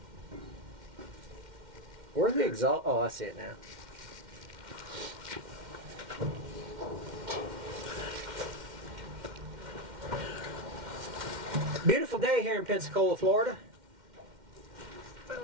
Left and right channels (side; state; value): left; late; 2.1 ms